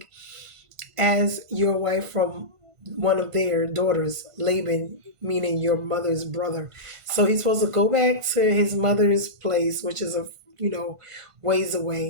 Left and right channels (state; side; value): late; left; 1.5 ms